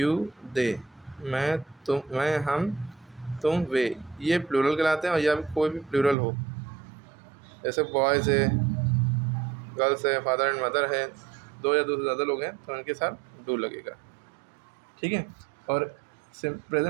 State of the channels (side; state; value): left; drops out; at 6.2 s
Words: दे, मैं, तुम, मैं, हम, तुम, वे, ये प्लूरल कहलाते हैं। और या कोई भी प्लूरल हो, जैसे बॉयज़ है, गर्ल्स है, फादर एंड मदर है, दो या दो से ज़्यादा लोग हैं, तो उनके साथ डू लगेगा, ठीक है। और